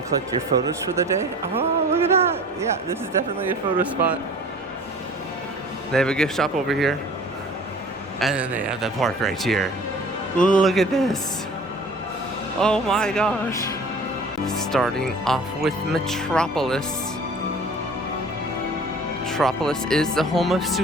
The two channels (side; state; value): both; normal; correlation 0.45